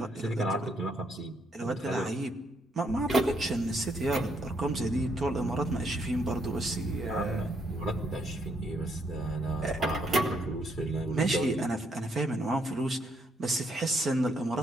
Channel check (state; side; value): normal; both; correlation 0.73